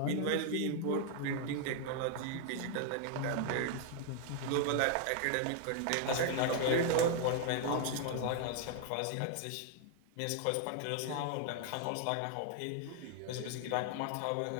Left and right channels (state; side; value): different; both; correlation 0.00